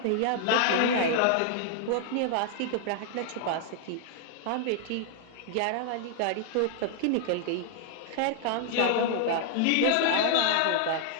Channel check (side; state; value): both; different; correlation 0.00